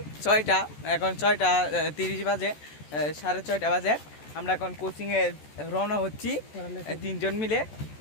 6টা, এখন 6:30 বাজে, 6:30 বাজে। আমরা এখন কোচিংয়ে রওনা হচ্ছি 3জন মিলে।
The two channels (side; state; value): right; late; 14 ms